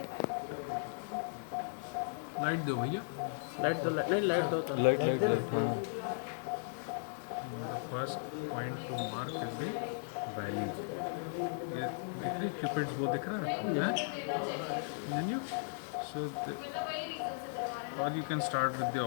लाइट दो भैया, लाइट दो, लाइट दो तो लाइट लाइट लाइट। हाँ, the first point two mark is the valley. ये दिख रही क्यूपिड्स वो दिख रहा है देन यू सो और you can start with the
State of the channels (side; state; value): right; silent; 53 dB below the other